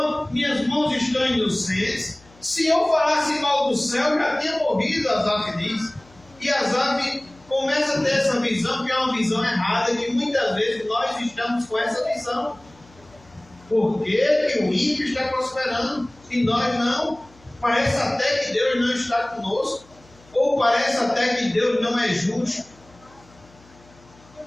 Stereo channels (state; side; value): noise; left; hum, 28 dB below the sound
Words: minhas mãos estão inocentes. Se eu falasse mal do céu, já tinha morrido, Asaf diz. E Asaf começa a ter essa visão, que é uma visão errada, que muitas vezes nós estamos com essa visão. Por que o ímpio está prosperando e nós não? Parece até que Deus não está conosco, ou parece até que Deus não é justo.